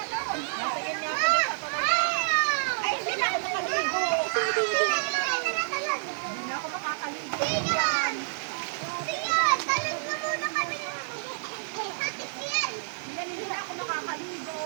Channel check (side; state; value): left; silent; digital silence